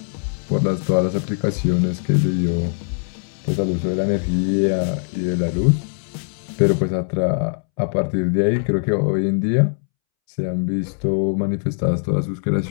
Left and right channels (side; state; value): right; silent; 65 dB below the other